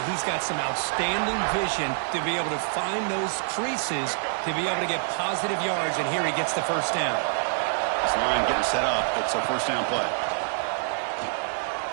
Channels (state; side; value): silent; left; 61 dB below the other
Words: he's got some outstanding vision to be able to find those creases, to be able to get positive yards, and here he gets the first down. This line getting set up. It's a first down play.